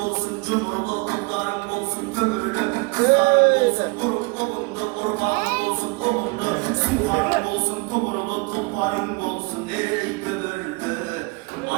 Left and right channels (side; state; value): left; quieter; 27.6 dB